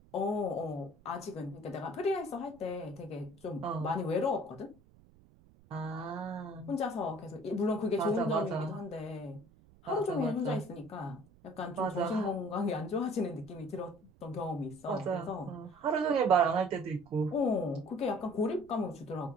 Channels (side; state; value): right; noise; rumble, 26 dB below the sound